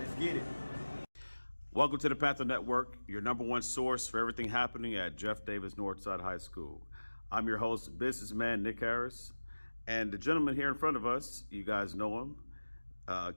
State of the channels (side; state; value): both; inverted; correlation -1.00